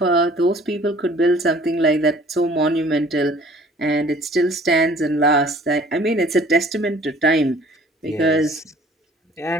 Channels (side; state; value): both; normal; correlation 0.53